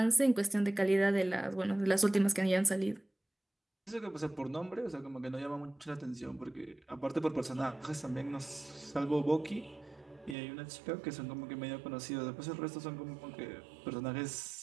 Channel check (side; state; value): left; drops out; at 10.4 s